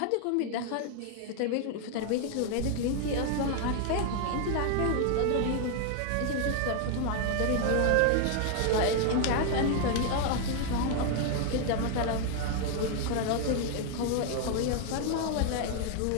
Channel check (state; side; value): different; both; correlation 0.00